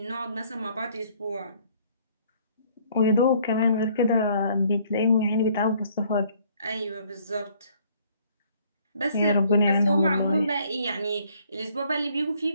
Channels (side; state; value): both; inverted; correlation -0.62